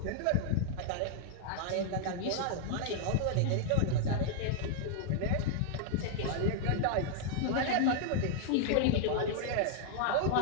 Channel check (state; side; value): different; both; correlation -0.01